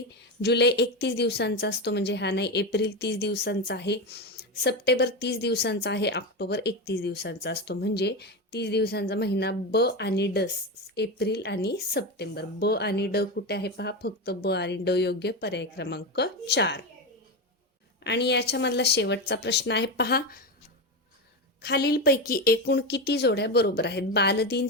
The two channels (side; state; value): both; normal; correlation 0.16